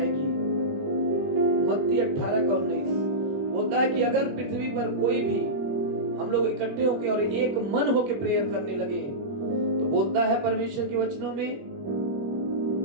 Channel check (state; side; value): late; left; 21 ms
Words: मत्ती 18:19 बोलता है कि अगर पृथ्वी पर कोई भी हम लोग इकट्ठे होकर और एक मन होकर प्रेयर करने लगे, तो बोलता है परमेश्वर के वचनों में